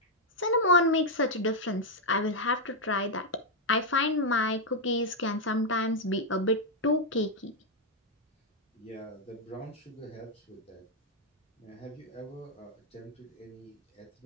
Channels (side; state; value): both; normal; correlation -0.01